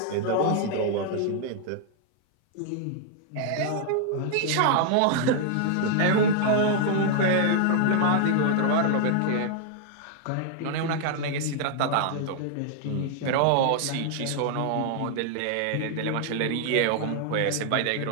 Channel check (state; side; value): different; both; correlation 0.00